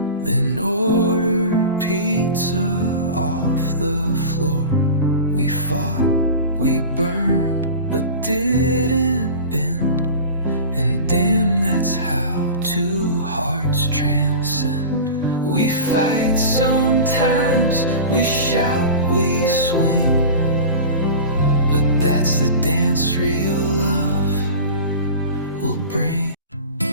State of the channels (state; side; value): inverted; both; correlation -0.33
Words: then ordered pizza off the floor. We fought, we burned, but didn't bend. And damn, that's how two hearts transcend. We fight sometimes, we shout, we swing, but that's the dance real love will bring.